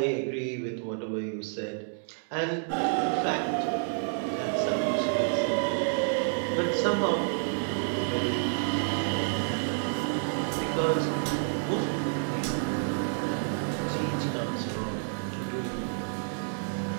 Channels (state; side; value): silent; left; digital silence